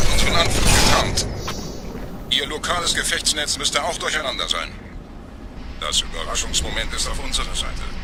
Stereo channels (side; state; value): both; identical; correlation 1.00